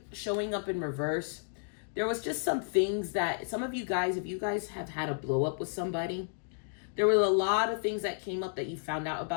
showing up in reverse, there was just some things that some of you guys, if you guys have had a blow up with somebody, there were a lot of things that came up that you found out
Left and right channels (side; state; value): right; silent; digital silence